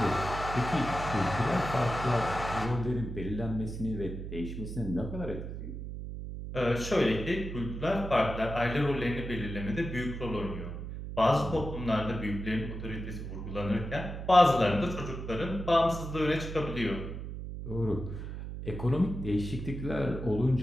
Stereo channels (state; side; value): noise; right; hum, 7 dB below the sound